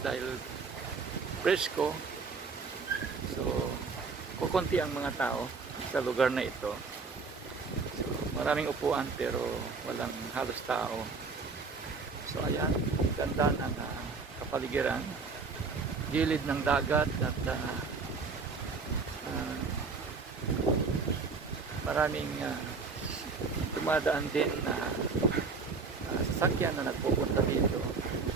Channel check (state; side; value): quieter; left; 4.6 dB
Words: dahil presko. So, kukunti ang mga tao sa lugar na ito. So, maraming upuan pero walang halos tao. So, ayan, ganda ng kapaligiran. Gilid ng dagat at maraming dumadaan din na sasakyan na nagpupunta dito.